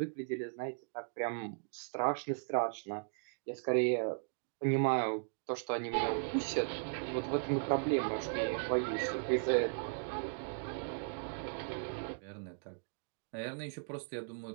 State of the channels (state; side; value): silent; left; digital silence